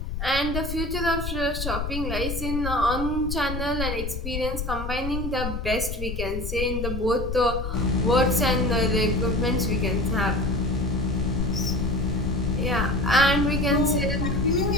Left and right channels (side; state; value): left; noise; rumble, 4 dB below the sound